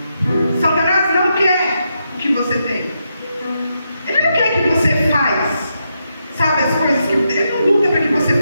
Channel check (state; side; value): inverted; both; correlation -0.83